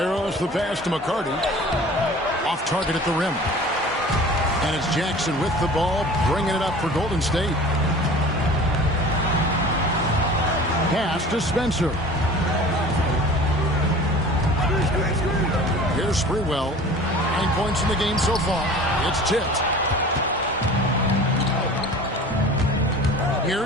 the pass to McCarty. Off target at the rim. And it's Jackson with the ball, bringing it up for Golden State. Pass to Spencer. Here's Sprewell. 9 points in the game so far. It's tipped.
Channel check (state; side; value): normal; both; correlation 0.42